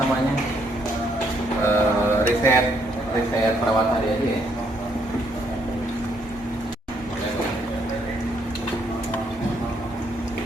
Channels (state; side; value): normal; both; correlation 0.71